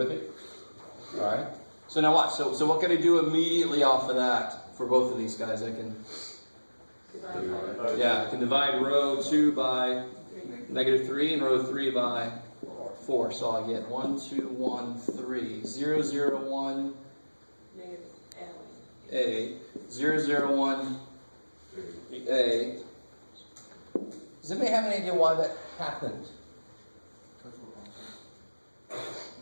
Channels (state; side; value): inverted; both; correlation -1.00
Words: me? All right. So now watch. So what can I do immediately off of that for both of these guys? I can divide row 2 by -3 and row 3 by 4. So I get 1, 2, 1, 3, 0, 0, 1, A, 0, 0, 1, A. Does anybody have any idea why that happened?